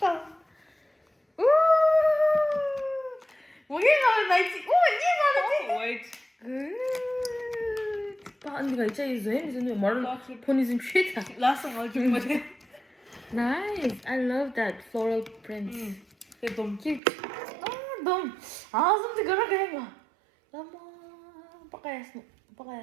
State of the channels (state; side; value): drops out; left; at 17.0 s